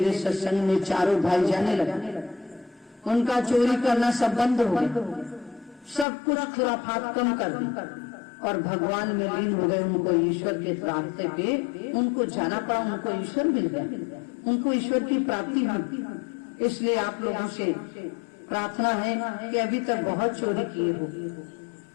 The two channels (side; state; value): right; drops out; at 6.1 s